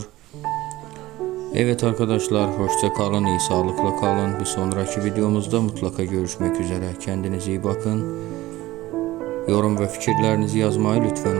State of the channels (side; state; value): left; quieter; 17.4 dB